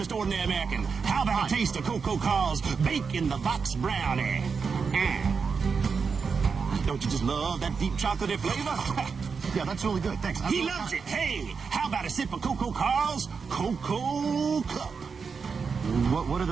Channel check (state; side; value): quieter; left; 5.5 dB